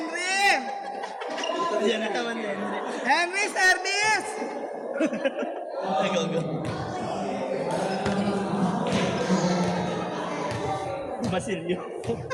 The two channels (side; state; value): both; identical; correlation 1.00